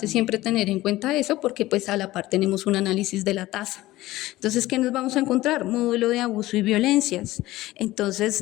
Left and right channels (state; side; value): quieter; right; 17.2 dB